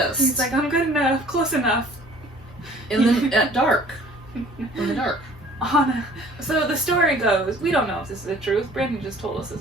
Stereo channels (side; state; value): both; normal; correlation 0.52